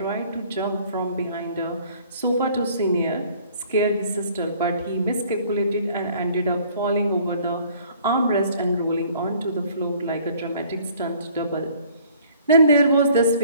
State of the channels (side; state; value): both; inverted; correlation -0.56